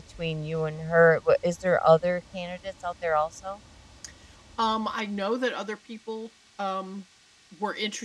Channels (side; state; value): both; identical; correlation 1.00